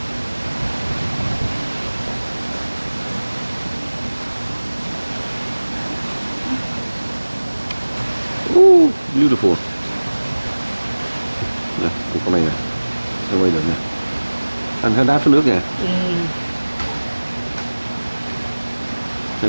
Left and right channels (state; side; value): inverted; both; correlation -1.00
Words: Beautiful. Nè, con này nè, nó quay được nè. Anh thấy đá phía nước nè.